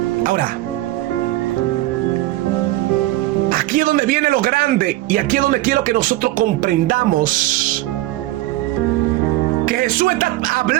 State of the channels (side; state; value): left; quieter; 17.0 dB